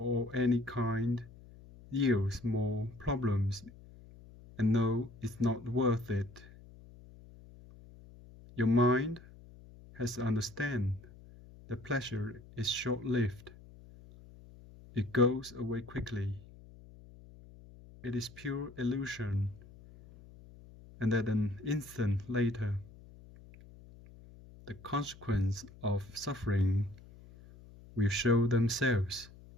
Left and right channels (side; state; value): left; noise; hum, 20 dB below the sound